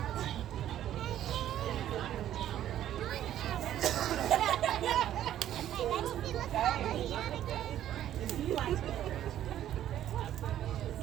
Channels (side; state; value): left; quieter; 11.7 dB